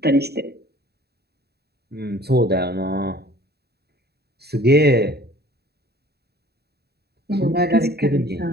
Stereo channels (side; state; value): left; late; 0.47 ms